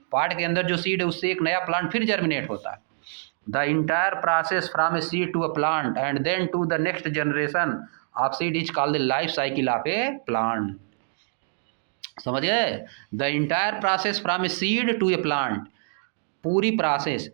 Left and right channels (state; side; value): silent; left; digital silence